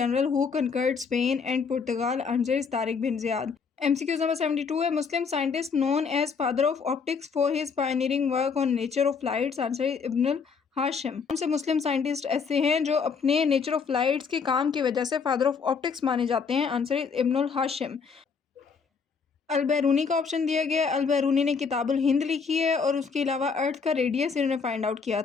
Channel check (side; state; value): right; quieter; 5.6 dB